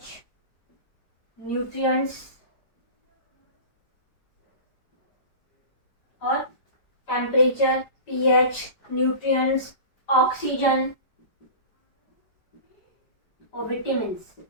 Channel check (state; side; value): late; right; 5.0 ms